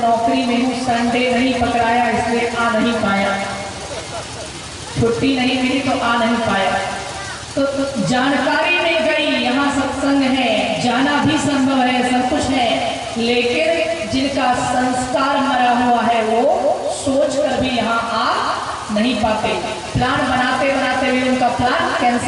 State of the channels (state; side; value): identical; both; correlation 1.00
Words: में हूँ, संडे नहीं पकड़ाया इसलिए आ नहीं पाया, छुट्टी नहीं मिली तो आ नहीं पाया। तो जानकारी मिल गई यहाँ सत्संग है, जाना भी संभव है, सब कुछ है, लेकिन जिनका संस्कार मरा हुआ है वो सोच कर भी यहाँ आ नहीं पाते। प्लान बनाते बनाते भी उनका प्लान